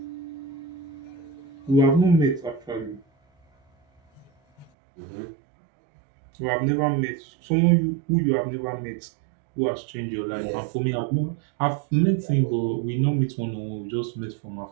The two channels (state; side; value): drops out; left; at 4.7 s